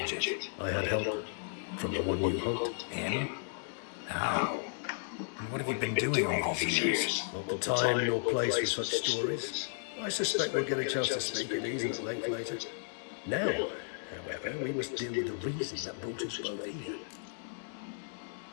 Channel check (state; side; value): silent; right; 55 dB below the other